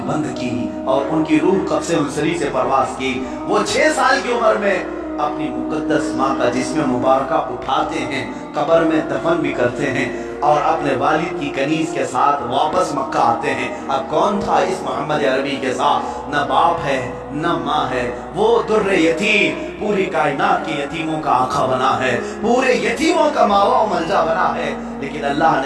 بند کی اور ان کی روح قبض انصری سے پرواز کی۔ وہ 6 سال کی عمر میں اپنی مقدس ماں کا جسم مبارکہ اٹھاتے ہیں، قبر میں دفن بھی کرتے ہیں، اور اپنے والد کی کنیز کے ساتھ واپس مکہ آتے ہیں۔ اب کون تھا اس محمد عربی کے ساتھ؟ نہ باپ ہے نہ ماں ہے، وہ در یتیم، پوری کائنات کے یتیموں کا آقا بنا ہے، پورے یتیموں کا ماوا و ملجا بنا ہے، لیکن اللہ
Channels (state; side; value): identical; both; correlation 1.00